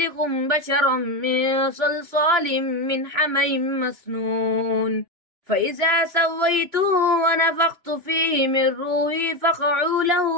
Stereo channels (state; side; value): late; left; 2.9 ms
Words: بشرا من صلصال من حمإ مسنون فإذا سويته ونفخت فيه من روحي فقعوا